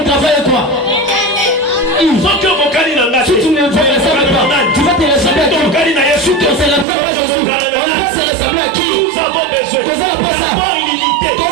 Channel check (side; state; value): left; drops out; at 6.9 s